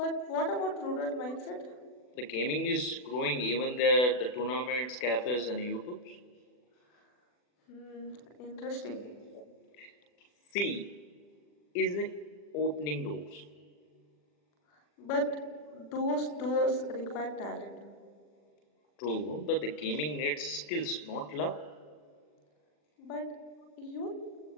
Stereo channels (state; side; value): late; right; 40 ms